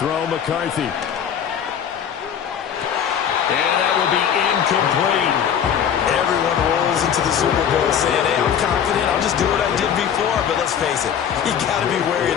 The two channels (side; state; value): right; quieter; 8.5 dB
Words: McCarthy. And that will be incomplete. Everyone rolls into the Super Bowl saying, hey, I'm confident. I'll just do what I did before. But let's face it, you got to be wary